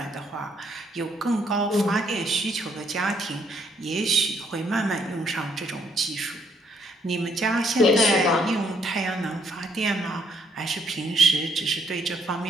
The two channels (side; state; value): both; normal; correlation 0.70